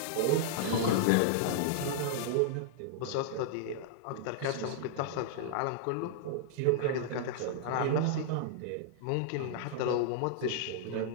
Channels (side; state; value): both; different; correlation -0.01